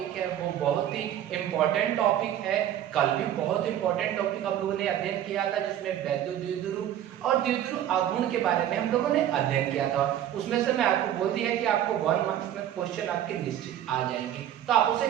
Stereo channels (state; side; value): quieter; left; 11.2 dB